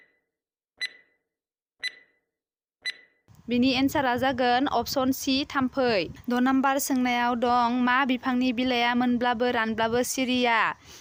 बिनि एन्सारा जागोन अपसन सि थाम्फै। 6 नाम्बार सोंनायाव दं मा बिफांनि बिलाइया मोनब्लाबो रानब्लाबो सिरिया?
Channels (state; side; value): identical; both; correlation 1.00